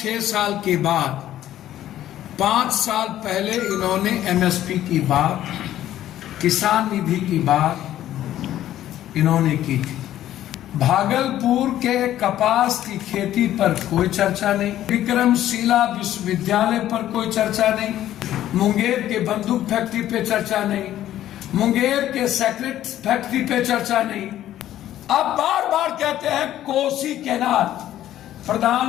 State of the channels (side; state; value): right; quieter; 12.7 dB